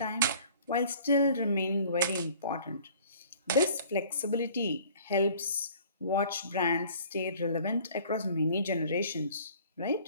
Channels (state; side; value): inverted; both; correlation -0.51